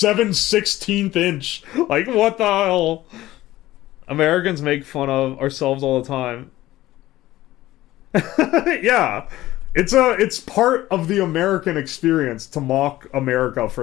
inch. Like, what the hell? Americans make fun of ourselves all the time. Yeah. It's part of the American experience to mock America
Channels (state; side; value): quieter; right; 16.0 dB